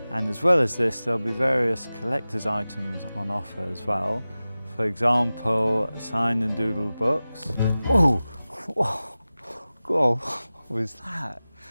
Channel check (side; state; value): both; inverted; correlation -0.96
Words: And as well as this, there'll be various collector's items on offer as well. For example, signed and doodled books. Oh, whoa, whoa, what was that?